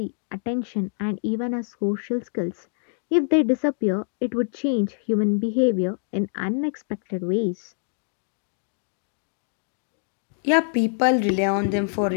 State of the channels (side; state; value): right; silent; digital silence